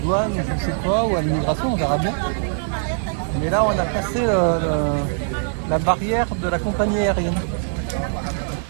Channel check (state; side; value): silent; left; digital silence